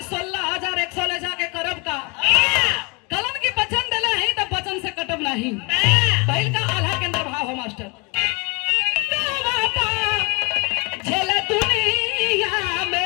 16,100 ले जाके करब का। कलन की वचन दिले है तो वचन से कटब नहीं। पहल का आल्हा के अंदर भाव हो मास्टर। झेल दुनिया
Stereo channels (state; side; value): quieter; right; 29.8 dB